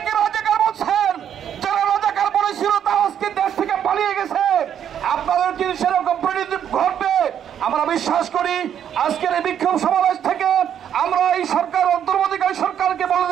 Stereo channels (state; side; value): quieter; left; 9.3 dB